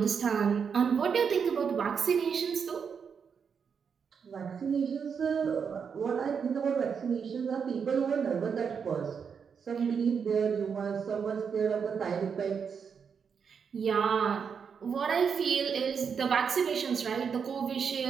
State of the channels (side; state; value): left; quieter; 6.5 dB